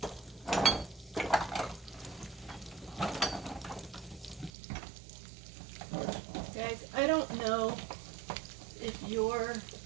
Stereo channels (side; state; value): left; drops out; at 4.5 s